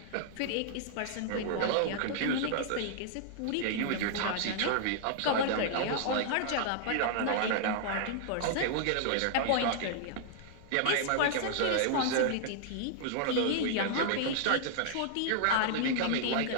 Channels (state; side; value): different; both; correlation -0.01